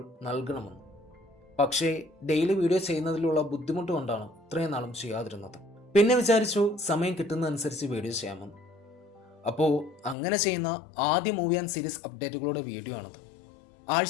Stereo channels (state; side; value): drops out; right; at 10.2 s